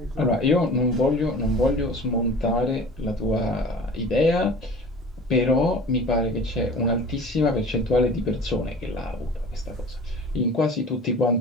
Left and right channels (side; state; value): both; normal; correlation 0.41